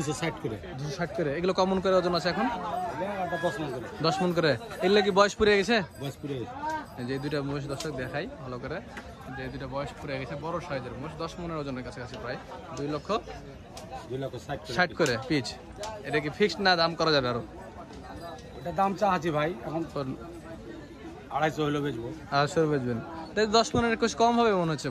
করে। 260 করে। এগুলো কমন করে ওজন আছে এখন? একটা 10 মণ করে। 10 মণ করে। এগুলো কি বয়স পুড়ে গেছে? বয়স পুড়ে গেছে। যে দুইটা মোষ দর্শক দেখাই ভালো করে, যে দুইটা বয়স পুড়ে গেছে, বড় সাইজের মোষ, 10 মণের ওজনের কাছাকাছি, প্রায় 2,60,000 করে পিচ। এটা কি ফিক্সড না দাম করা যাবে আরো? এটা দাম চাচ্ছি ভাই, এখন 250 হলো বেচবো। 250 বেচবেন? 10 মণের কিছু কম হবে মনে হচ্ছে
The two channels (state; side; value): identical; both; correlation 1.00